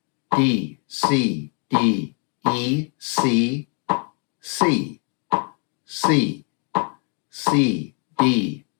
D, C, D, E, C, C, C, C, D,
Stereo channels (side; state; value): right; quieter; 38.5 dB